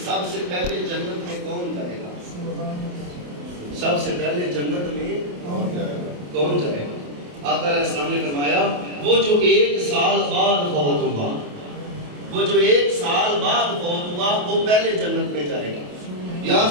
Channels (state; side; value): late; left; 28 ms